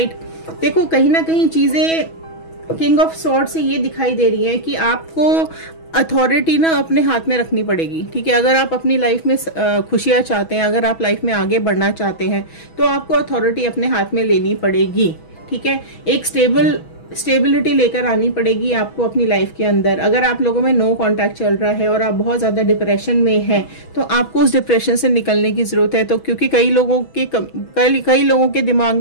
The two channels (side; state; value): right; late; 6.2 ms